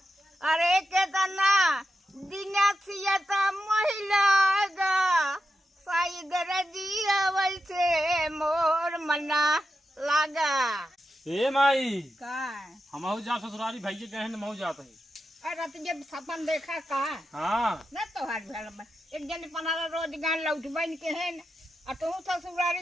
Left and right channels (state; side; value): normal; both; correlation 0.89